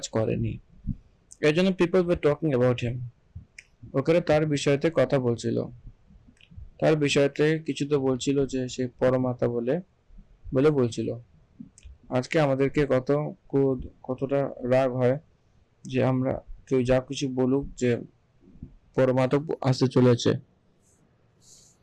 করেনি। এর জন্য people were talking about him, ওখানে তার বিষয়তে কথা বলছিল, তার বিষয়তে কিছু তো বলছিল যে সে পরমাত্মা বলে বলছিল। আজকে আমাদেরকে কতটা রাগ হয় যে আমরা কেউ যা কিছু বলুক যে পরমাত্মা আসতে চলেছে,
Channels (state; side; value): identical; both; correlation 1.00